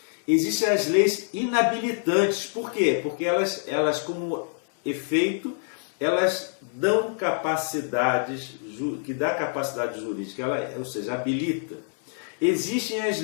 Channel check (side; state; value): right; silent; 61 dB below the other